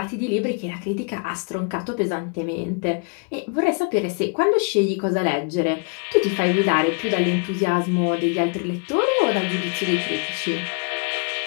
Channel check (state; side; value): quieter; right; 35.0 dB